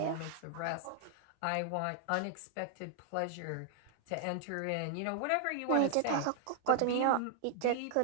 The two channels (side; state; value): both; different; correlation 0.00